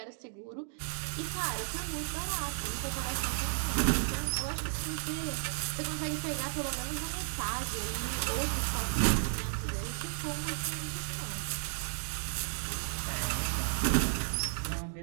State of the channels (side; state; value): left; silent; digital silence